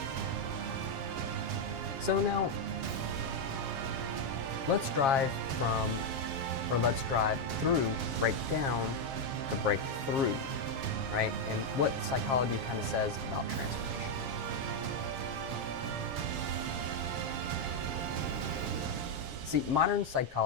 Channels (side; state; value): left; late; 7.4 ms